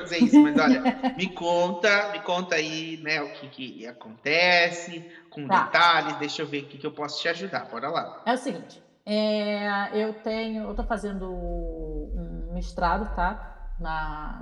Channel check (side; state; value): both; identical; correlation 1.00